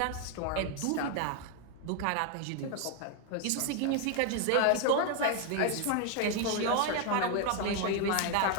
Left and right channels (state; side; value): different; both; correlation 0.01